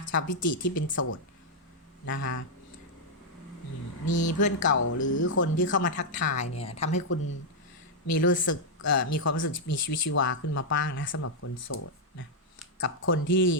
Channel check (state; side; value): normal; both; correlation -0.03